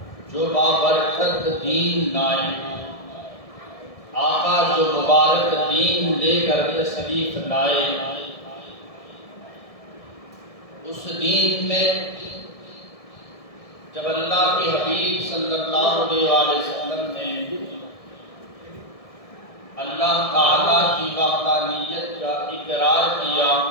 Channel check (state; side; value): late; right; 1.7 ms